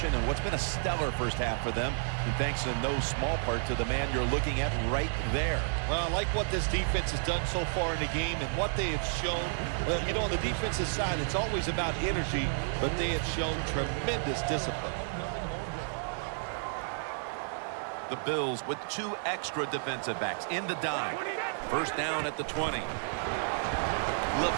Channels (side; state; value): left; silent; digital silence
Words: and what's been a stellar first half for them, and thanks in no small part to the man you're looking at right there. Well, I like what this defense has done so far in the game and what they have shown. You know, on the defensive side, it's always about energy, but they have shown tremendous discipline. The Bills with 2 extra defensive backs in the dime. First down at the 20.